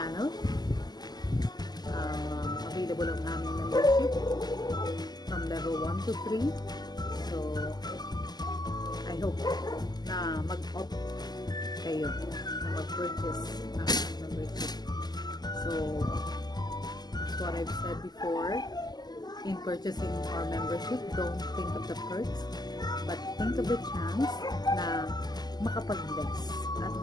Available ang aming membership from level 1 to 3. So, I hope na mag-opt kayo na mag-purchase ng membership. So, that's what I've said before. In purchasing our membership, don't think of the perks, but think of the chance na makapag-bless at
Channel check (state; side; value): late; right; 0.20 ms